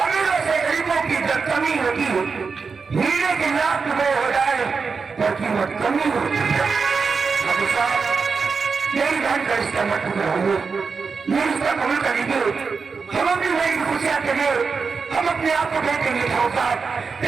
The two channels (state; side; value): quieter; left; 5.1 dB